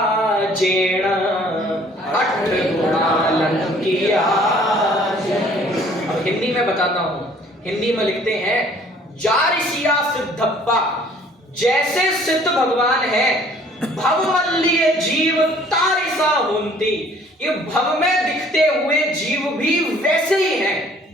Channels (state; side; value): normal; both; correlation 0.56